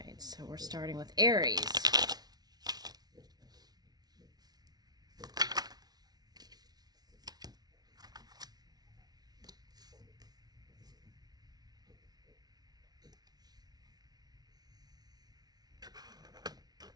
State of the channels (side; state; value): left; late; 0.19 ms